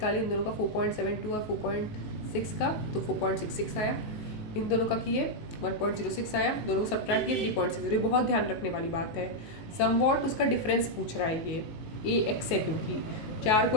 इन दोनों का 4.72 और 4.6 का, तो 4.66 आया। इन दोनों का किए 1.06 आया, दोनों को सब्ट्रैक्ट किए 3.6। ये बहुत ध्यान रखने वाली बात है। समवॉट उसका डिफरेंस पूछ रहा है, ये ए एक्स है, क्योंकि 4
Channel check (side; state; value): right; late; 19 ms